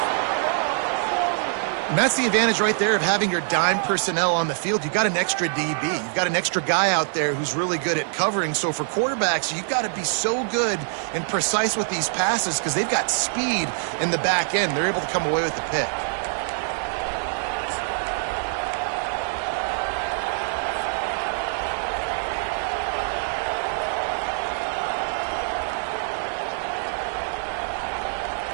And that's the advantage right there of having your dime personnel on the field. You've got an extra DB. You've got an extra guy out there who's really good at covering. So for quarterbacks, you've got to be so good and precise with these passes because they've got speed in the back end. They're able to come away with the pick.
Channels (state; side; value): silent; left; digital silence